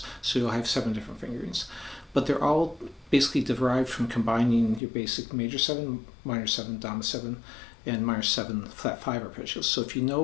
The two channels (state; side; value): drops out; right; at 4.8 s